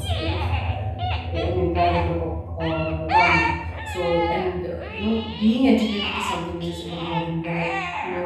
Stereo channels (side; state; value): both; identical; correlation 1.00